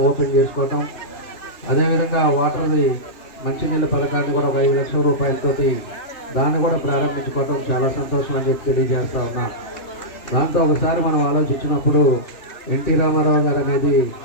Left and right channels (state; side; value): late; right; 2.9 ms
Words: ఓపెన్ చేసుకోవటం, అదేవిధంగా వాటర్ది మంచినీళ్ళ పథకాన్ని కూడా 5 లక్షల రూపాయలతోటి దాన్ని కూడా ప్రారంభించుకోవటం చాలా సంతోషం అని చెప్పి తెలియజేస్తా ఉన్నా. దాంతో ఒకసారి మనం ఆలోచించినప్పుడు ఎన్టీ రామారావు గారు అనేది